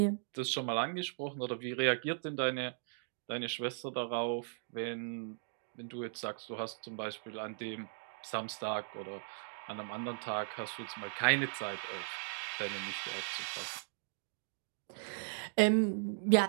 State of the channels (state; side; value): silent; left; digital silence